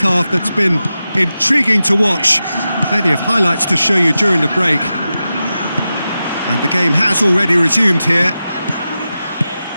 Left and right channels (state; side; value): inverted; both; correlation -0.92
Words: that's been intriguing to watch. Plenty of highlights to show you during the break. And the game has already resumed here.